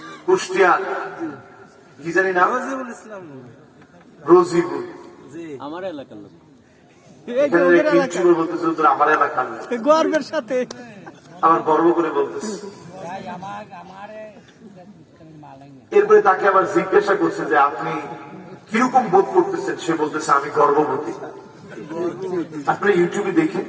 কুষ্টিয়া কি জানি না, রোজিবুল, আমার এলাকার লোক, আমার এলাকার গর্বের সাথে আমার গর্ব করে বলতেছে। এরপরে তাকে আবার জিজ্ঞাসা করছে যে আপনি কিরকম বোধ করতেছেন? সে বলতেছে আমি গর্ভবতী। আপনি ইউটিউবে দেখেন,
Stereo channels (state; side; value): identical; both; correlation 1.00